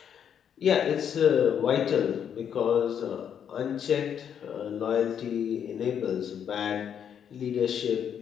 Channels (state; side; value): quieter; right; 8.4 dB